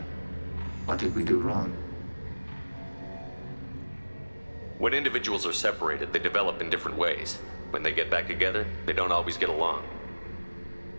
What did we do wrong? When individuals are separated, they develop in different ways. When they get back together, they don't always get along.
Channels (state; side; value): inverted; both; correlation -1.00